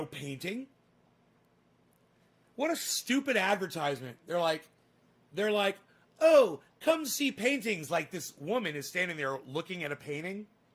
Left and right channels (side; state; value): both; identical; correlation 1.00